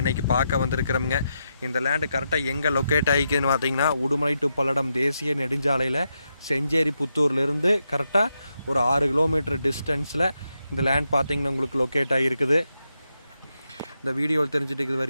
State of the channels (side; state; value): both; inverted; correlation -0.85